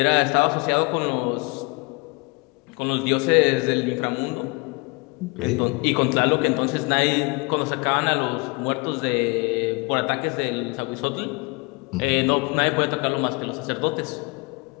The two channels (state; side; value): quieter; right; 28.8 dB